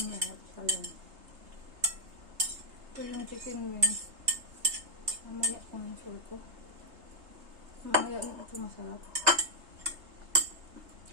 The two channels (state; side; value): late; left; 3.3 ms